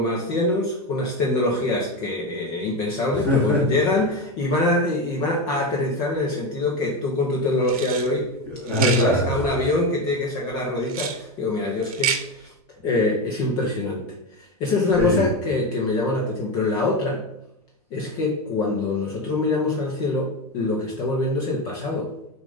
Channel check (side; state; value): both; normal; correlation 0.17